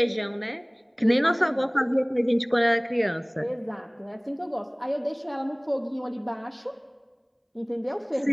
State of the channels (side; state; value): both; identical; correlation 1.00